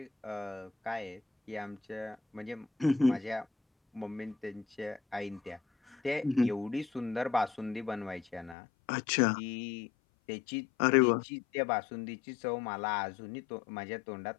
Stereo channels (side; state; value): right; drops out; at 8.6 s